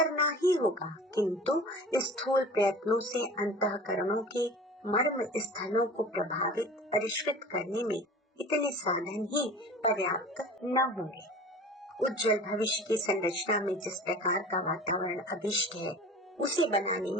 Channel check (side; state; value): both; normal; correlation 0.40